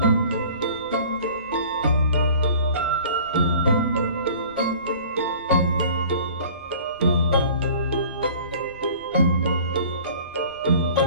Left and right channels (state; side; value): inverted; both; correlation -0.46